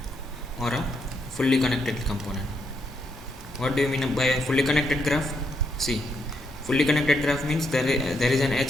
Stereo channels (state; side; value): normal; both; correlation 0.78